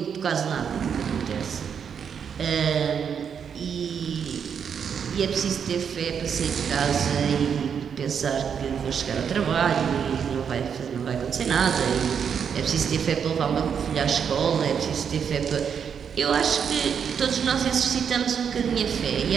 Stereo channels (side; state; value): left; quieter; 7.3 dB